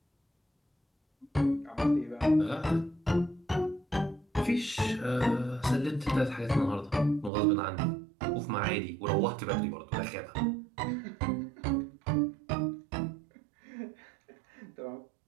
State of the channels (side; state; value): left; drops out; at 7.3 s